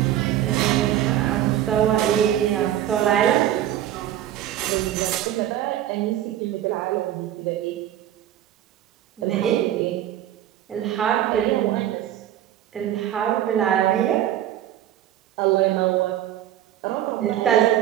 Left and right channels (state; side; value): quieter; left; 12.0 dB